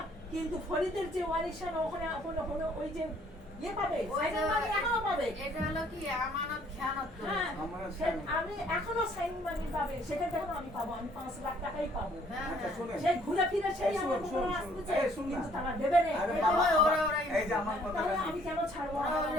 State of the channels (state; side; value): normal; both; correlation 0.61